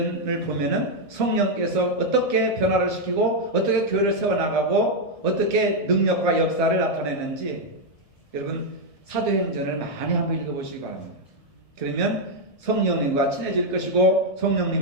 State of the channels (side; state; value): right; late; 1.7 ms